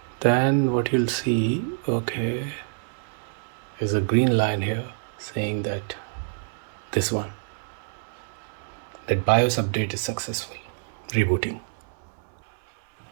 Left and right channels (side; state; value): left; silent; digital silence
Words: then what you'll see, okay, is a green line here saying that this one, that BIOS update is successful. Rebooting.